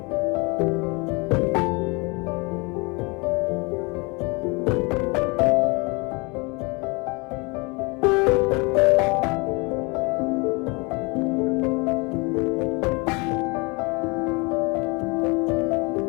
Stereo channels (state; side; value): quieter; right; 28.5 dB